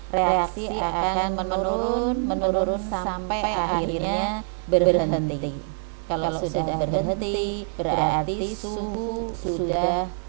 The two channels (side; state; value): left; silent; 58 dB below the other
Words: reaksi akan menurun sampai akhirnya berhenti. Kalau sudah berhenti, berarti suhu sudah